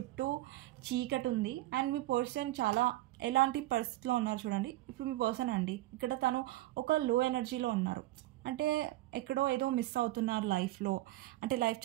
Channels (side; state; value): left; quieter; 16.6 dB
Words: చీకటి ఉంది అండ్ మీ పర్సన్ చాలా ఎలాంటి పరిస్థితిలో ఉన్నారు చూడండి. ఇప్పుడు మీ పర్సన్ అండి ఇక్కడ తను ఒక లో ఎనర్జీలో ఉన్నారు. అంటే ఎక్కడో ఏదో మిస్ అవుతున్నారు లైఫ్లో. అంటే లైఫ్